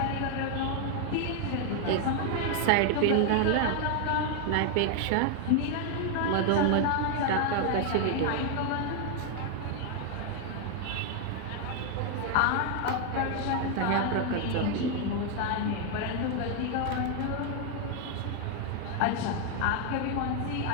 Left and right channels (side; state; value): both; different; correlation 0.00